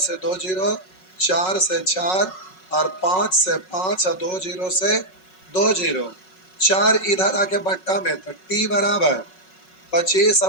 2 जीरो, 4 से 4, और 5 से 5, और 2 जीरो से 2 जीरो, 4 इधर आके बट्टा में, तो टी बराबर 25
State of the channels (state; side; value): late; right; 5.4 ms